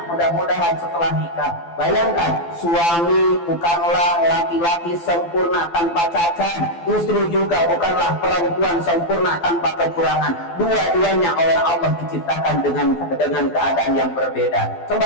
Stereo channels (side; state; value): right; late; 12 ms